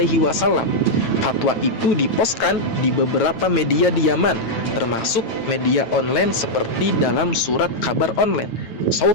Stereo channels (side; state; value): right; late; 9.0 ms